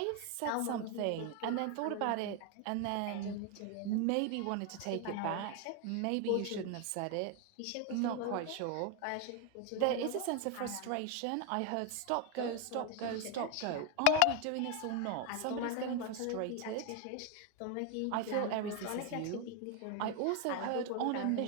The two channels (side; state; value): both; different; correlation 0.01